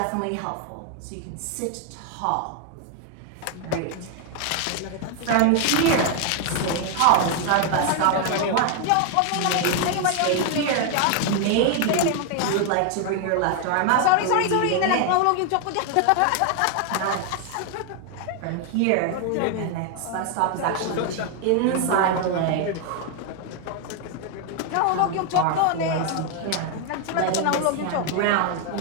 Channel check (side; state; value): both; different; correlation 0.01